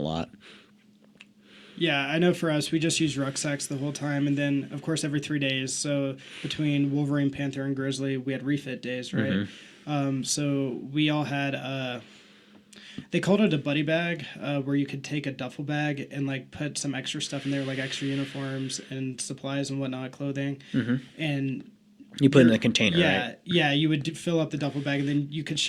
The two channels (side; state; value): both; identical; correlation 1.00